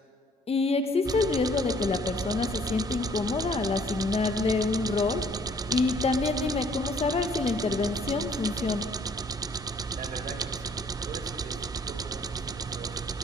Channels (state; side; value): normal; both; correlation 0.59